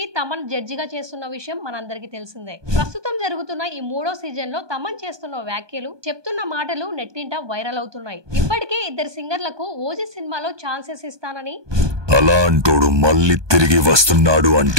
తమన్ జడ్జిగా చేస్తున్న విషయం మనందరికీ తెలిసిందే. ప్రస్తుతం జరుగుతున్న ఈ 3వ సీజన్ లో తమన్ చేస్తున్న వ్యాఖ్యలు, చెప్తున్న మాటలు నెట్టింట వైరల్ అవుతున్నాయి. ఇప్పటికే 2 సింగర్లకు ఓజీ సినిమాలో ఛాన్సెస్ ఇస్తానని, అలాంటోడు మళ్ళీ తిరిగి వస్తున్నాడు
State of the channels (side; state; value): left; late; 1.2 ms